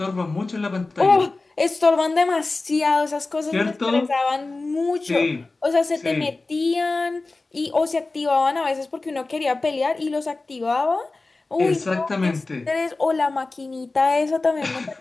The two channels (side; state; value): right; quieter; 3.4 dB